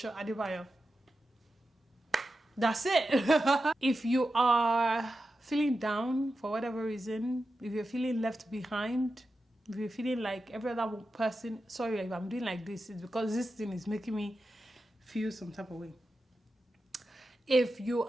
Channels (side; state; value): both; normal; correlation 0.91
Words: Adebayo. That's it. If you are feeling down for whatever reason, if you're feeling left behind, if you're feeling like every other person, sorry if I'm doing like this, it's because this thing is making me feel some type of way. If you